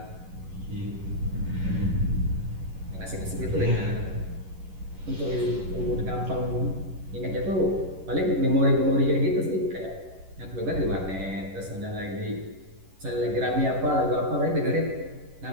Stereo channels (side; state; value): left; late; 11 ms